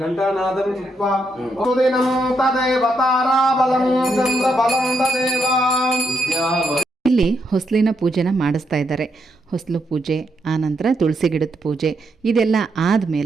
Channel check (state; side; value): normal; both; correlation 0.79